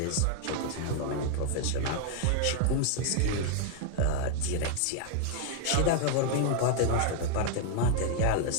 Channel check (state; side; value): different; both; correlation 0.00